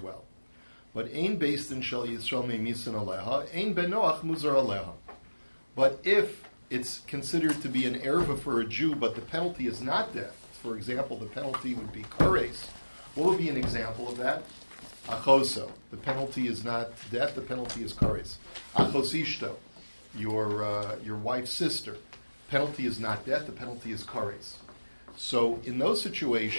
But ein beis-din shel Yisrael memisin aleha, ein ben Noach muzar aleha. But if it's considered to be an erva for a Jew, but the penalty is not death, for example, the penalty would be kares. What would be an example of that? Achoso. The penalty is not death, the penalty is kares. Achosishto, your wife's sister. Penalty is not death, the penalty is kares. So in those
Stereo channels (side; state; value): both; inverted; correlation -1.00